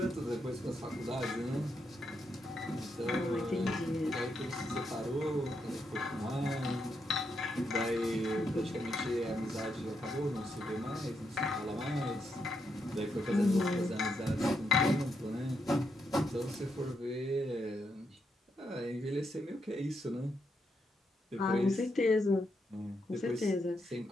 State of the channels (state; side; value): normal; both; correlation 0.81